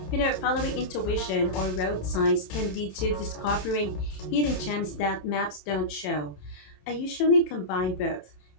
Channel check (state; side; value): late; right; 27 ms